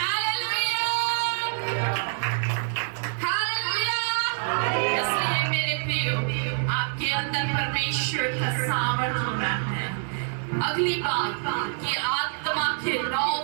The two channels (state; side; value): silent; left; digital silence